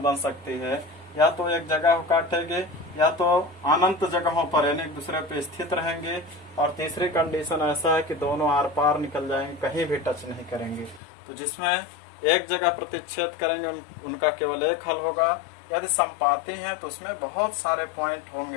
बन सकती है, या तो एक जगह को काटेंगे, या तो अनंत जगहों पर यानी एक दूसरे पे स्थित रहेंगे, और तीसरी कंडीशन ऐसा है कि दोनों आर पार निकल जाएंगे, कहीं भी टच नहीं करेंगे। तो जिसमें एक जगह प्रतिच्छेद करेंगे उनका केवल एक हल होगा। यदि संपाती है तो उसमें बहुत सारे पॉइंट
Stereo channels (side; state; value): right; drops out; at 11.0 s